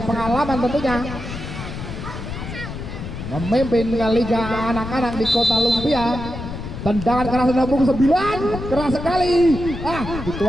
tentunya, memimpin Liga anak-anak di Kota Lumpia. Tendangan keras nomor 9, keras sekali.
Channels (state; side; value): noise; left; rumble, 8 dB below the sound